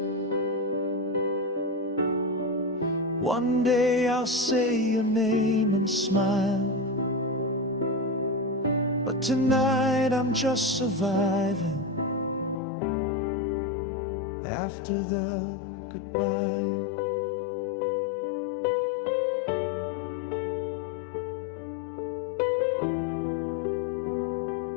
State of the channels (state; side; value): drops out; right; at 12.6 s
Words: One day I'll say your name and smile. But tonight I'm just surviving after the goodbye.